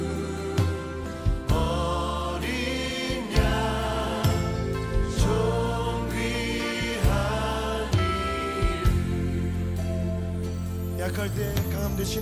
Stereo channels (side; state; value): both; identical; correlation 1.00